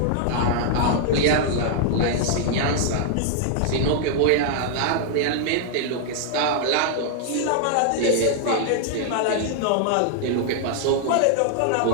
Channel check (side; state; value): both; different; correlation 0.00